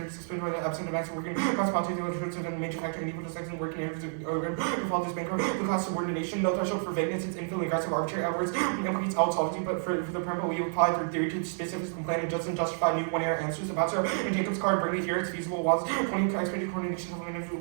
explained by the absent of acts of working class politics which are the major factor in equal to sex and working areas of all this bankrupt the class subordination, no threshold for vagueness, it's infinitely aggressive arbitrary outwards implicates out solvency, but for the preamble we apply their theory to specific complaint and doesn't justify new one-error answers about so in Jacob's card bring it here it's feasible was 20 expected coordination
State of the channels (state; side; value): silent; left; digital silence